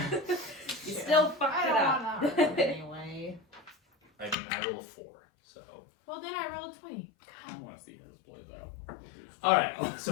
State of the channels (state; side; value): drops out; right; at 4.4 s